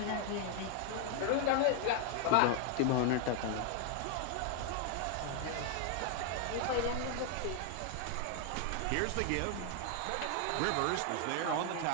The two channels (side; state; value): both; different; correlation 0.00